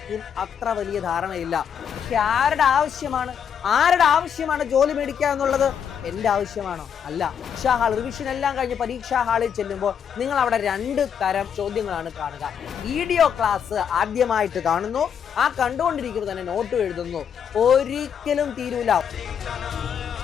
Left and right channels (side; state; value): right; quieter; 7.9 dB